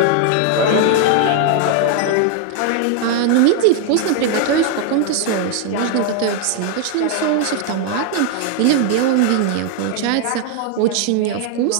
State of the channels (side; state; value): both; different; correlation 0.00